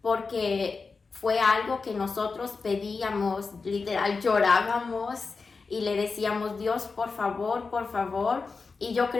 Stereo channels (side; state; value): right; quieter; 4.5 dB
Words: porque fue algo que nosotros pedíamos, literal llorábamos y le decíamos, Dios, por favor, por favor. Y yo